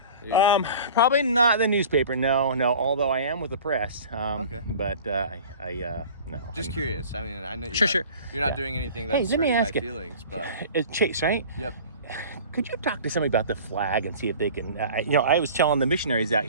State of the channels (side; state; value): both; inverted; correlation -0.42